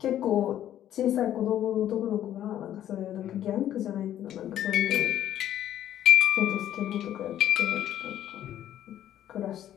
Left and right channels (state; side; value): quieter; right; 11.6 dB